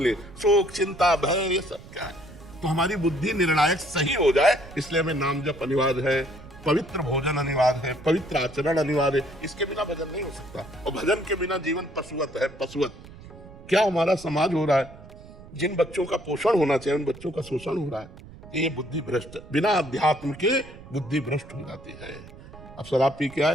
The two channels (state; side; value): noise; right; rumble, 18 dB below the sound